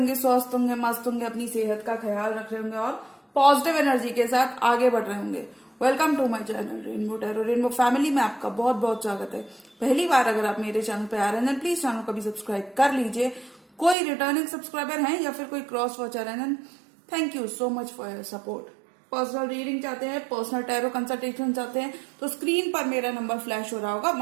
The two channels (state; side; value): drops out; left; at 14.0 s